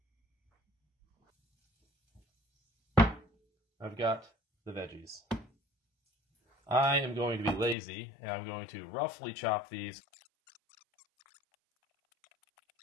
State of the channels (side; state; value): right; drops out; at 7.8 s